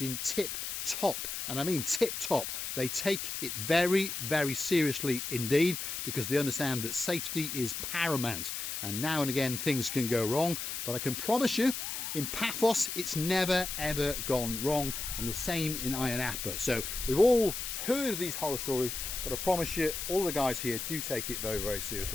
in tip-top. And I mean tip-top. They take it very, very seriously indeed, because they understand that safety is paramount. And now and again things can go wrong, but I can promise you, in Paphos it's never ever gone wrong, and the same in Ayia Napa. So we've all heard of these horror stories, but I promise you, all the guys here do take it very, very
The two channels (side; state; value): left; noise; hiss, 4 dB below the sound